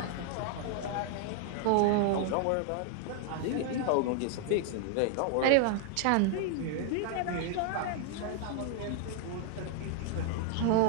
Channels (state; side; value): different; both; correlation 0.00